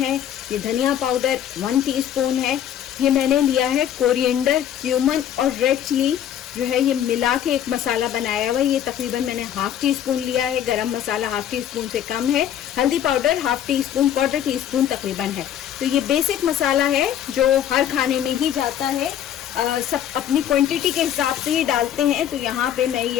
ये धनिया पाउडर 1 टीस्पून है, ये मैंने लिया है कोरिएंडर, क्यूमन और रेड चिली जो है ये मिला के एक मसाला बनाया हुआ है। ये तकरीबन मैंने 1/2 टीस्पून लिया है। गरम मसाला 1/2 टीस्पून से कम है। हल्दी पाउडर 1/2 टीस्पून, 1/4 टीस्पून तकरीबन है। तो ये बेसिक मसाला है जो हर खाने में ही जाता है, सब अपनी क्वांटिटी के हिसाब से ही डालते हैं, तो यहाँ पे मैं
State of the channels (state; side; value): quieter; right; 10.3 dB